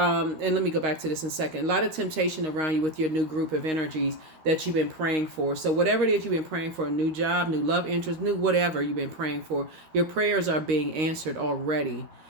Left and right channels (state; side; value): late; left; 13 ms